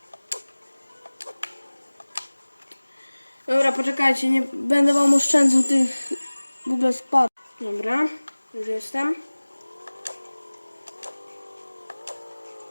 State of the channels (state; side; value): inverted; both; correlation -1.00